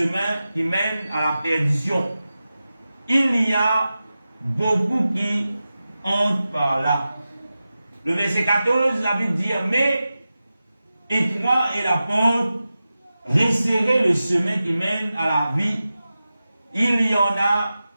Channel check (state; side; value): inverted; both; correlation -0.94